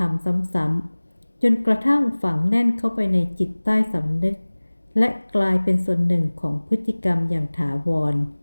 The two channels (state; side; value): inverted; both; correlation -1.00